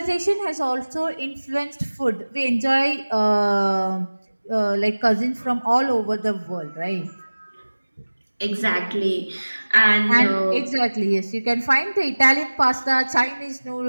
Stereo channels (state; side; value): inverted; both; correlation -1.00